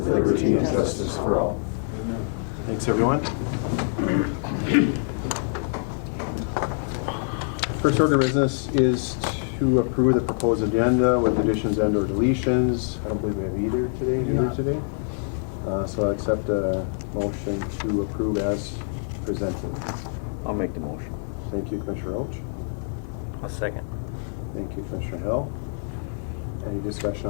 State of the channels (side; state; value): right; silent; digital silence